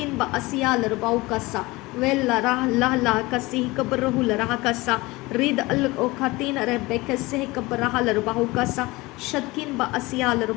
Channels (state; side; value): quieter; right; 21.8 dB